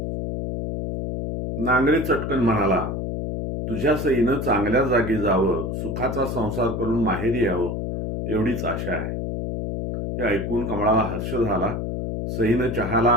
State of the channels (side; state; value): left; noise; hum, 3 dB below the sound